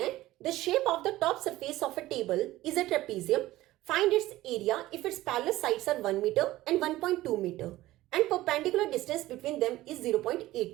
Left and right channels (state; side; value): quieter; left; 16.6 dB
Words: the shape of the top surface of a table is a trapezium, find its area if its parallel sides are 1 metre and 1.2 metre and perpendicular distance between them is